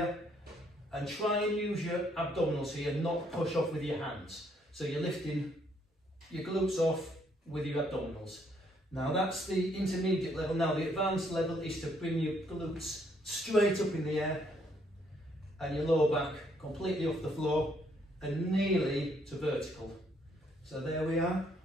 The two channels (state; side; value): normal; both; correlation 0.69